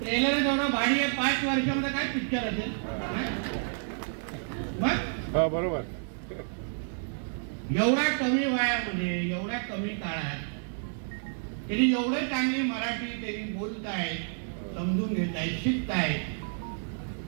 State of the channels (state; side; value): silent; left; 58 dB below the other